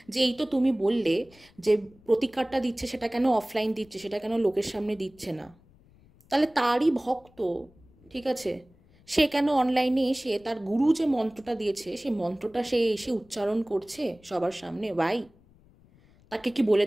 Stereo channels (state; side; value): noise; left; rumble, 29 dB below the sound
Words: যে এই তো তুমি বললে যে প্রতিকারটা দিচ্ছে, সেটা কেন অফলাইন দিচ্ছে, সেটা কেন লোকের সামনে দিচ্ছে না? তাহলে তারই ভক্ত, ঠিক আছে, সে কেন অনলাইনে এসে তার গুরু যে মন্ত্রটা দিয়েছে সেই মন্ত্রটা সে এসে উচ্চারণ করছে সবার সামনে? ভাই, তাকে কি বলে